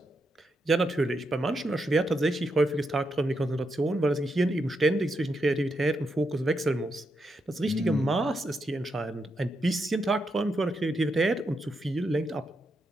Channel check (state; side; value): normal; both; correlation 0.83